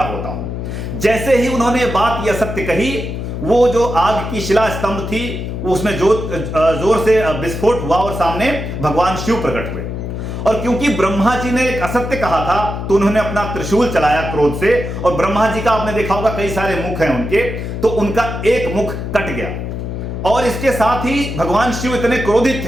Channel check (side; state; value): left; noise; hum, 5 dB below the sound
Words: होता हूं। जैसे ही उन्होंने बात यह सत्य कही, वो जो आग की शिला स्तंभ थी उसमें जोर से विस्फोट हुआ और सामने भगवान शिव प्रकट हुए। और क्योंकि ब्रह्मा जी ने एक असत्य कहा था तो उन्होंने अपना त्रिशूल चलाया क्रोध से, और ब्रह्मा जी का आपने देखा होगा कई सारे मुख हैं उनके, तो उनका एक मुख कट गया। और इसके साथ ही भगवान शिव इतने क्रोधित